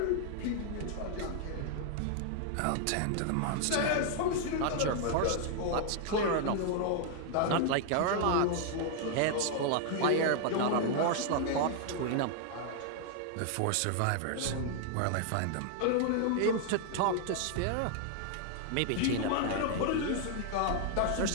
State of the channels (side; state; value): both; different; correlation 0.00